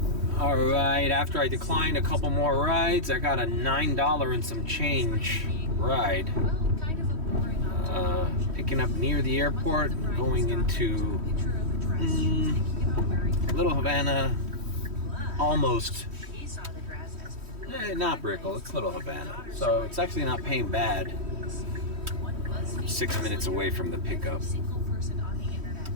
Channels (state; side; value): late; left; 3.1 ms